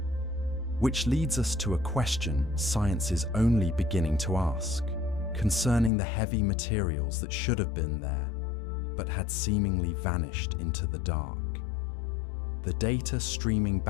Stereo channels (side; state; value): right; drops out; at 5.9 s